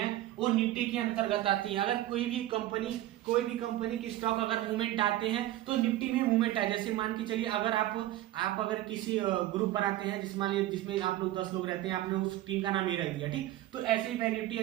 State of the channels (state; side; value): quieter; left; 14.8 dB